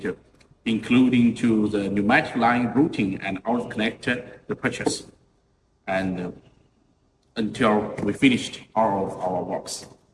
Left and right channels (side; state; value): both; identical; correlation 1.00